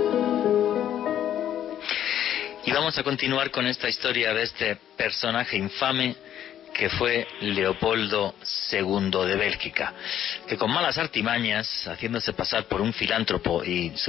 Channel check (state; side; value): quieter; right; 10.8 dB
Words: Y vamos a continuar con esta historia de este personaje infame que fue Leopoldo II de Bélgica, que con malas artimañas, haciéndose pasar por un filántropo y